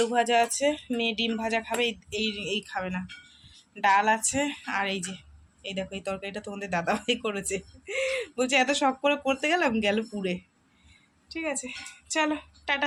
ভাজা আছে, মেয়ে ডিম ভাজা খাবে, এই এই খাবে না। ডাল আছে, আর এই যে এই দেখো এই তরকারিটা তোমাদের দাদাভাই করেছে, বলছে এত শখ করে করতে গেলাম, গেল পুড়ে। ঠিক আছে, চলো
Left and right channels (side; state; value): both; identical; correlation 1.00